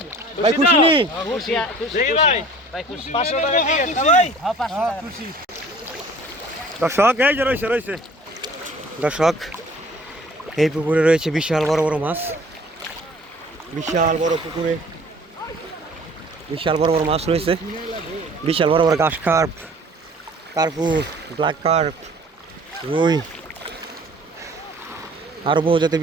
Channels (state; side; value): normal; both; correlation 0.50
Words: ভাই খুশি নি? দেখি ভাই 500 টাকা টিকিট না ভাই? হ্যাঁ 500 টাকা খুশি। দর্শক এই যে রয়েছে দর্শক, এই পুকুরে রয়েছে বিশাল বড় বড় মাছ, বিশাল বড় পুকুরে বিশাল বড় বড় মাছ রয়েছে, বিশাল বড় বড় ঘাস কার্প, কার্পু, ব্ল্যাক কার্প, রুই, আরও বহু জাতের